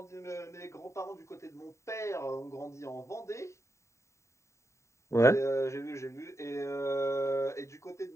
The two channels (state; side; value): late; right; 0.14 ms